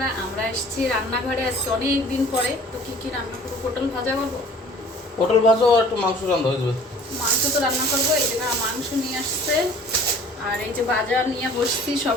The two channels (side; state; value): both; normal; correlation 0.50